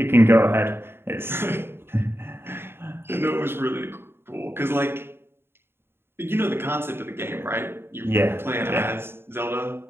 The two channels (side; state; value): left; late; 0.11 ms